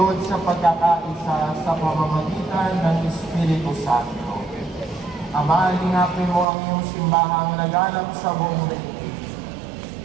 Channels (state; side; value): drops out; left; at 6.5 s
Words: sa pagkakaisa sa pamamagitan ng Espiritu Santo. Ama, lingapin mo ang iyong simbahang laganap sa buong daigdig.